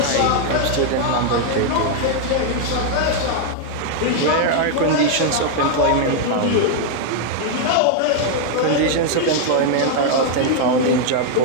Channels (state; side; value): different; both; correlation 0.00